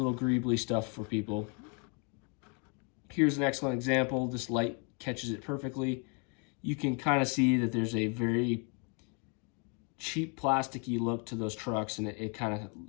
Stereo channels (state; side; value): quieter; right; 35.9 dB